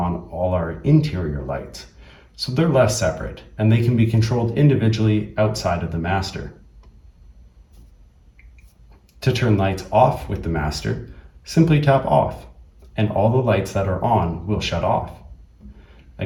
all our interior lights. So they're less separate, and they can be controlled individually outside of the master. To turn lights off with the master, simply tap off, and all the lights that are on will shut off.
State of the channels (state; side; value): identical; both; correlation 1.00